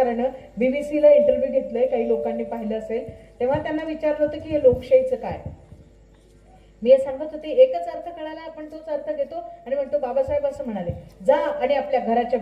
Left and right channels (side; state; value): both; identical; correlation 1.00